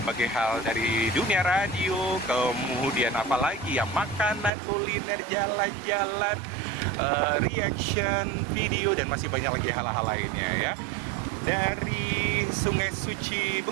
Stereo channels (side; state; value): left; drops out; at 4.5 s